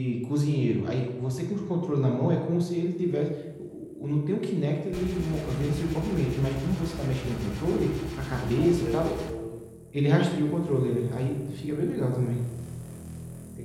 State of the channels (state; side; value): identical; both; correlation 1.00